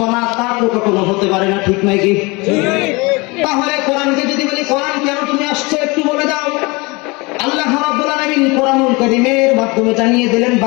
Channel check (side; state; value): right; quieter; 25.8 dB